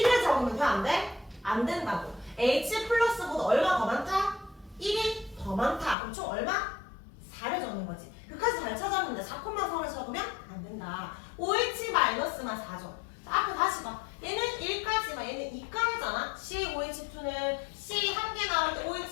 1을 적으면 돼? 안 돼? 안 된다고. H 플러스보다 얼마 더 많다? 1이 더 많다. 그럼 총 얼마? 4를 적는 거지. 끝까지 잘 찾았는데 4,4를 적으면 안 된다. OH-만 4죠. 자, 앞에 다시 봐. 얘는 1까지만, 얘는 2까지잖아. CaOH2는 C 1개 나올 때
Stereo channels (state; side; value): drops out; right; at 6.0 s